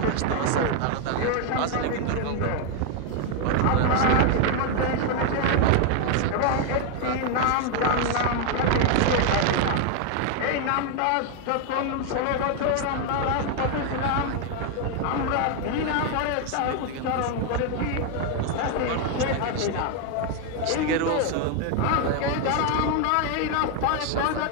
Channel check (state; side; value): different; both; correlation 0.01